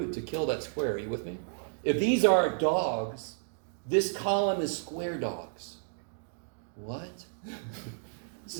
to kill that square. Are you with me? If these are dogs, this column is square dogs. What? This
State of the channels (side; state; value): left; silent; digital silence